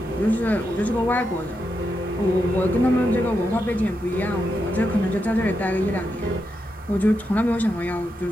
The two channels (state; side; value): normal; both; correlation 0.85